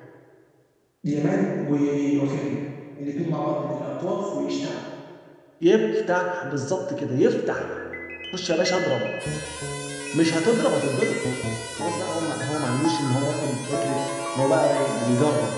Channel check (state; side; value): identical; both; correlation 1.00